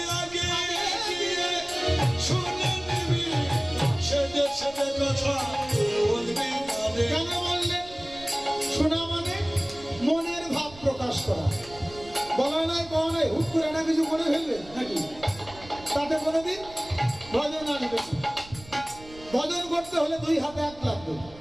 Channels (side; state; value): right; noise; rumble, 19 dB below the sound